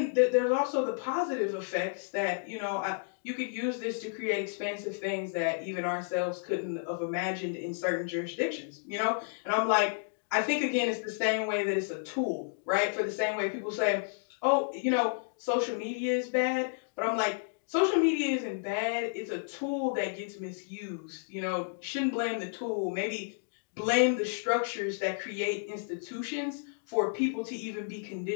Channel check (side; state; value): right; silent; digital silence